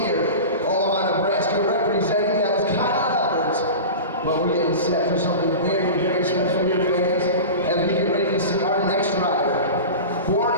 Omaha, Nebraska, representing. That was Kyle Alberts. But we're getting set for something very, very special here, fans, as we get ready to see our next rider. Born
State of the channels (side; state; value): both; inverted; correlation -0.30